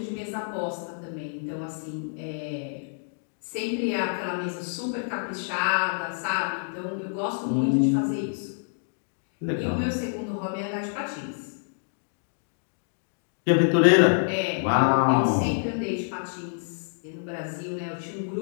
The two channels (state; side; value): silent; right; digital silence